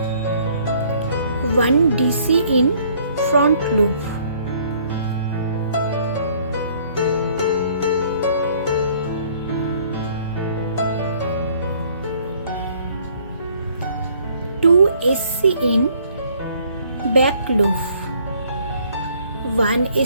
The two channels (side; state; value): both; inverted; correlation -0.61